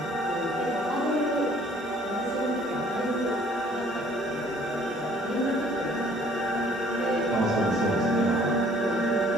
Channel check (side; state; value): both; normal; correlation 0.57